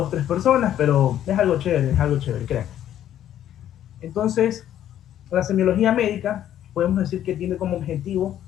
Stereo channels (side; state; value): right; quieter; 11.2 dB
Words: tres personas, pero es algo chévere, crean. Entonces, la semiología médica, podemos decir que tiene como objetivo